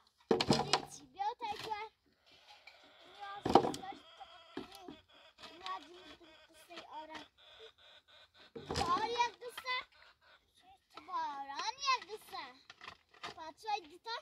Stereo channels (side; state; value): both; identical; correlation 1.00